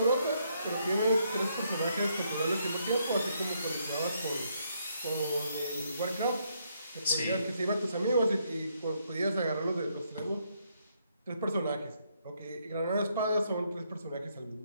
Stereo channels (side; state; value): both; inverted; correlation -0.74